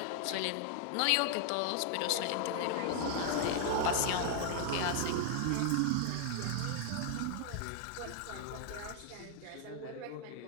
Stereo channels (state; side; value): different; both; correlation 0.00